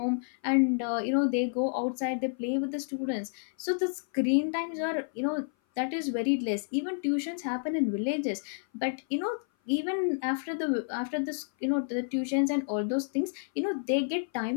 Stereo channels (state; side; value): silent; right; 56 dB below the other